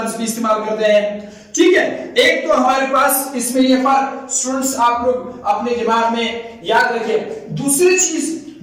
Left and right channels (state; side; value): identical; both; correlation 1.00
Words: भी इस्तेमाल करते हैं, ठीक है। एक तो हमारे पास इसमें ये फर्क स्टूडेंट्स आप लोग अपने दिमाग में याद रखिए। दूसरी चीज